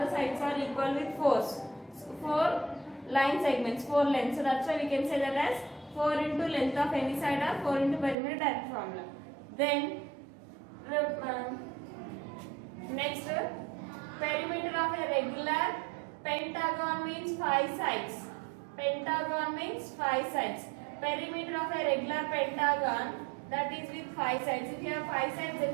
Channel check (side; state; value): left; drops out; at 8.2 s